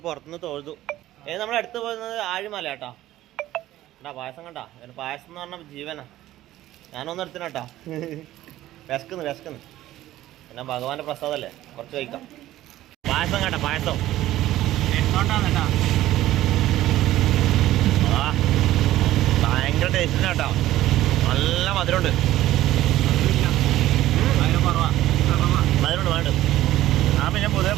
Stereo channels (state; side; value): quieter; left; 14.7 dB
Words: പുറത്തുനിന്ന് തൊഴുതു. നമ്മൾ അടുത്ത് പോകുന്നത് ആഴിമല കേട്ടോ. കേട്ടാ പായസം കണ്ടാ. പായസം എന്ന് പറഞ്ഞാൽ ജീവനാ. ഞാനൊന്നും എടുത്തിന കേട്ടാ. വിശക്കുന്നു. പിന്നെ ഭഗവാന്റെ പ്രസാദല്ലേ, കുറച്ച് കഴിക്കാം. പായസം കേട്ടാ, പായസം എന്തുകൊണ്ടാണ് കേട്ടാ. ഭയങ്കര ടേസ്റ്റിന് കേട്ടോ. നല്ല മധുരമുണ്ട്. മധുരമുണ്ട് വേണ്ട. പിന്നെ പൊതുവെ